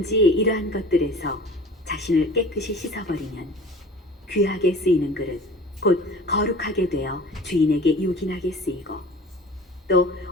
이러한 것들에서 자신을 깨끗이 씻어버리면 귀하게 쓰이는 그릇, 곧 거룩하게 되어 주인에게 요긴하게 쓰이고 또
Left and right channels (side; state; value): both; normal; correlation 0.42